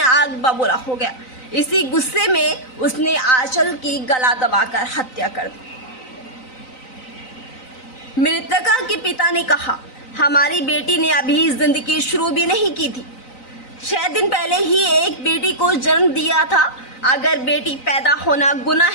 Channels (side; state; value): right; late; 3.9 ms